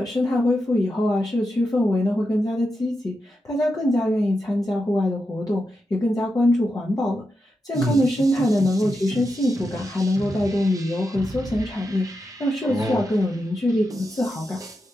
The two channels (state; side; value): normal; both; correlation 0.87